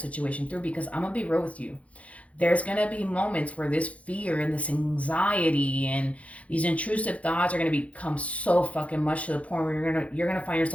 through. Because I'm gonna be real with you, there's going to be moments where this fear and this anxiety and these intrusive thoughts are going to become so fucking much to the point where you're going to find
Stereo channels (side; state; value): right; late; 0.065 ms